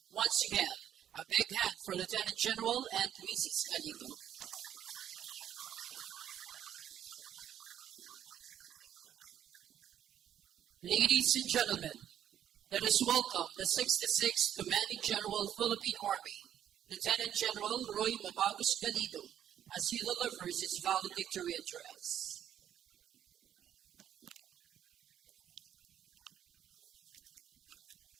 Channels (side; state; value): left; quieter; 10.3 dB